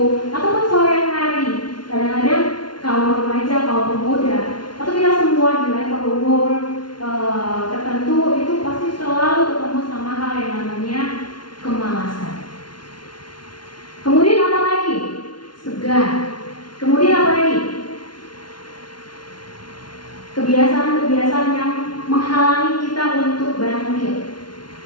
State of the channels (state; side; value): late; right; 0.71 ms